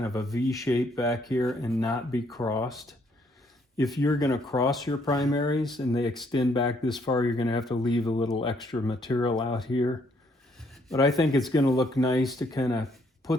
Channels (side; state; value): both; normal; correlation 0.69